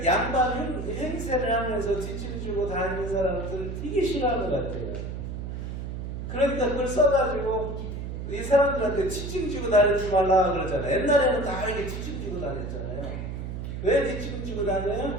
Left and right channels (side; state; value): right; noise; hum, 6 dB below the sound